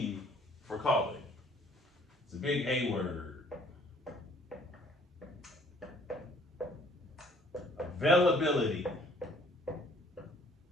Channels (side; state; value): both; normal; correlation 0.59